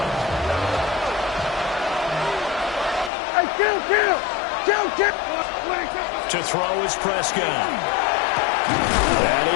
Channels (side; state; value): right; drops out; at 3.1 s